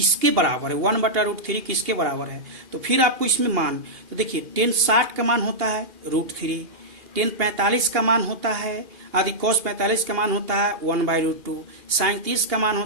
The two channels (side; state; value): left; late; 2.8 ms